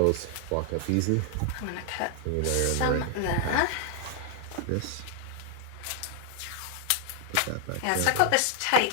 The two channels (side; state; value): both; different; correlation 0.00